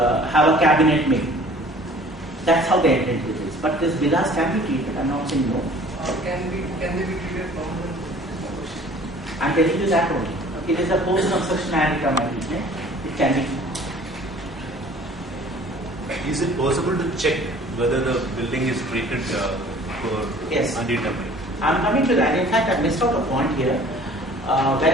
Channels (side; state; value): both; normal; correlation 0.50